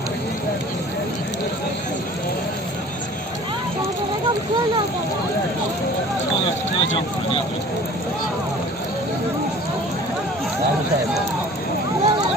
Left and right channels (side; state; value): both; normal; correlation 0.47